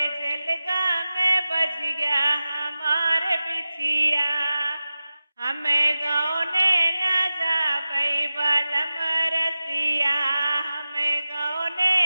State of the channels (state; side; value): inverted; both; correlation -0.95